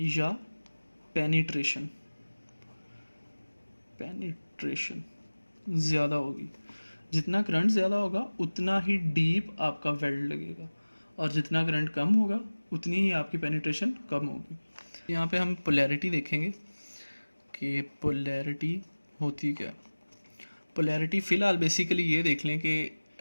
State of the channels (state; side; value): inverted; both; correlation -1.00